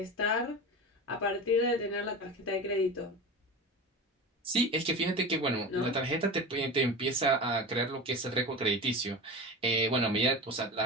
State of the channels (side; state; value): both; normal; correlation 0.28